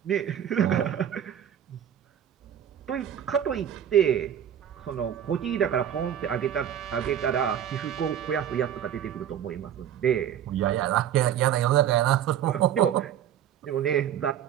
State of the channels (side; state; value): left; quieter; 9.9 dB